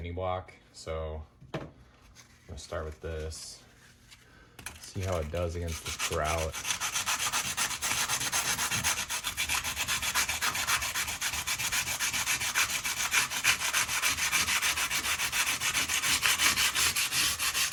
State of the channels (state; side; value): identical; both; correlation 1.00